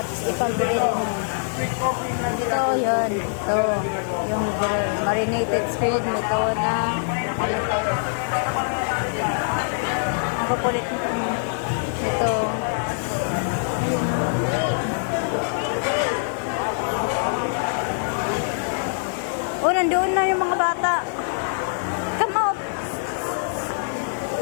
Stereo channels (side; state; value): right; silent; 59 dB below the other